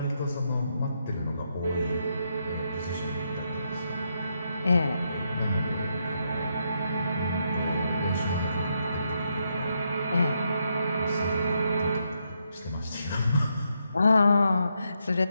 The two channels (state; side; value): inverted; both; correlation -0.80